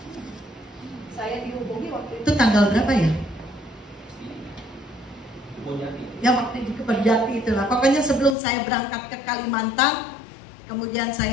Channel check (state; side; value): drops out; right; at 8.3 s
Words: Saya dihubungi waktu itu tanggal berapa ya? Ya waktu di Kebonjati itulah. Pokoknya sebelum saya berangkat ke Kalimantan, kemudian